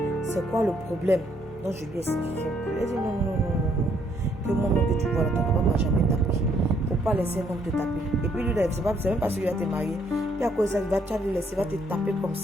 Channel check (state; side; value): normal; both; correlation 0.69